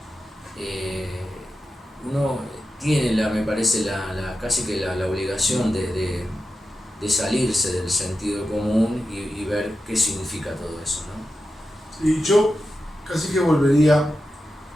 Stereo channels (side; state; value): both; normal; correlation 0.91